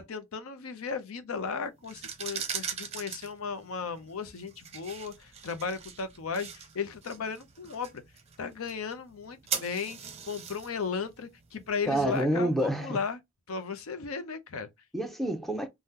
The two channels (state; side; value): normal; both; correlation 0.21